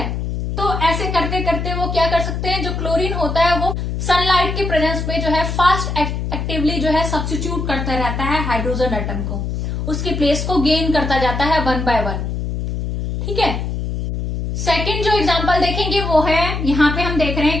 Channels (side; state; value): left; noise; hum, 3 dB below the sound